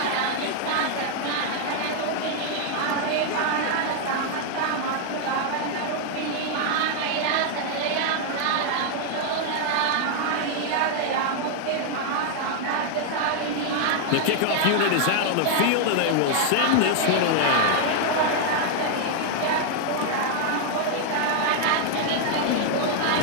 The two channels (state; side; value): different; both; correlation 0.00